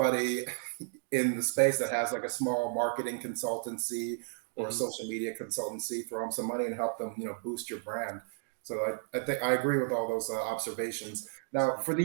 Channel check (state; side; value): silent; left; digital silence